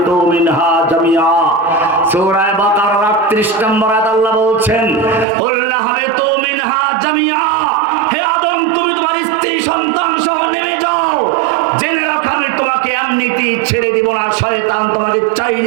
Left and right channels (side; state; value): left; drops out; at 5.2 s